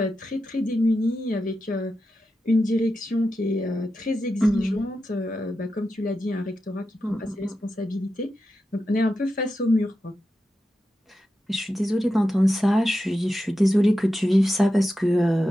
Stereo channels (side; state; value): both; normal; correlation 0.90